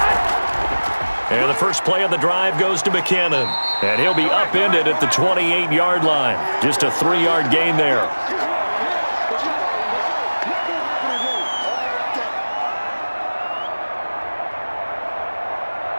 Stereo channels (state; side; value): inverted; both; correlation -1.00